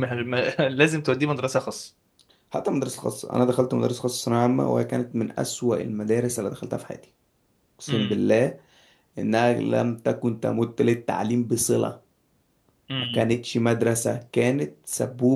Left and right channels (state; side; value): identical; both; correlation 1.00